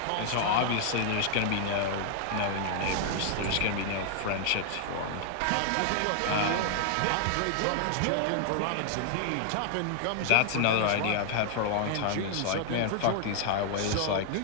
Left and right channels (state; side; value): different; both; correlation 0.00